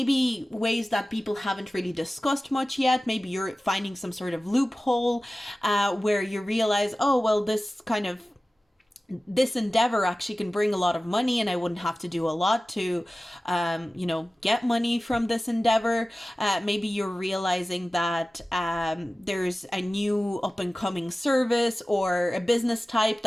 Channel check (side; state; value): both; normal; correlation 0.96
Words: ways that people haven't really discussed much yet. Maybe you're finding some sort of loophole where you realize, oh, well, this kind of this endeavor actually can bring a lot of money, and I wouldn't have to do a lot to, get money from this endeavor. Maybe you're realizing that there's a new up and coming service or a business type